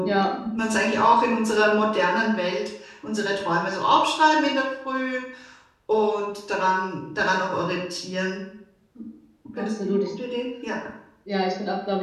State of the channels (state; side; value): identical; both; correlation 1.00